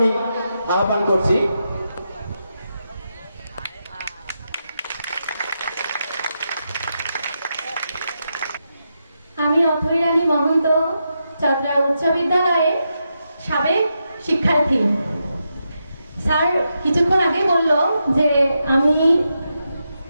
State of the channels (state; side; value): inverted; both; correlation -0.85